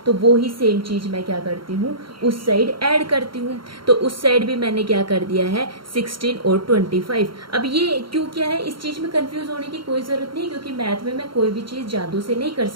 तो वो ही सेम चीज मैं क्या करती हूँ, उस साइड ऐड करती हूँ। तो उस साइड भी मैंने क्या कर दिया है, 16 और 25। अब ये क्यों क्या है, इस चीज में कंफ्यूज होने की कोई जरूरत नहीं, क्योंकि मैथ में मैं कोई भी चीज जादू से नहीं कर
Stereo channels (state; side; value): late; left; 0.73 ms